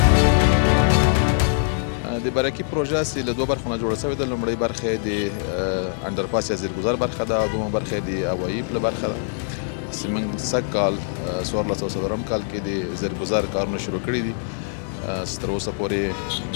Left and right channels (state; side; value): silent; right; digital silence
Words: برکی پروژه است له دوه برخو نه جوړه شوې ده. لومړۍ برخه د انډرپاس یا زیرګذر برخه ده او دویمه برخه د هوایي پله برخه ده. موږ سږ کال 1400 کال کې د زیرګذر کارونه شروع کړي دي. تر اوسه پورې